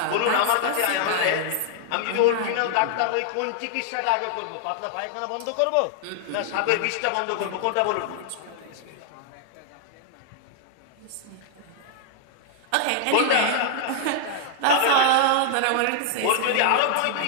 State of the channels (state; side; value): different; both; correlation -0.01